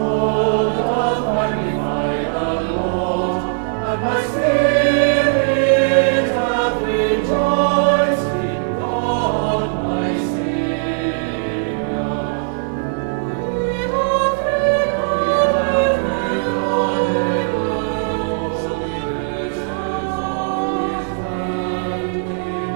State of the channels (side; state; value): left; silent; digital silence